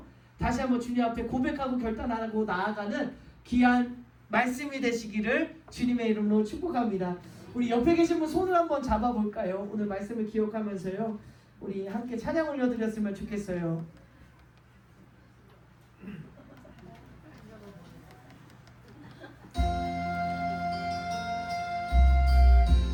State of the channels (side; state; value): both; identical; correlation 1.00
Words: 다시 한번 주님 앞에 고백하고 결단하고 나아가는 귀한 말씀이 되시기를 주님의 이름으로 축복합니다. 우리 옆에 계신 분 손을 한번 잡아볼까요? 오늘 말씀을 기억하면서요, 우리 함께 찬양 올려드렸으면 좋겠어요.